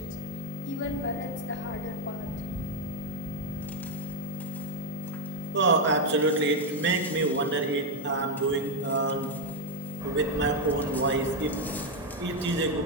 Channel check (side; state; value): both; normal; correlation 0.03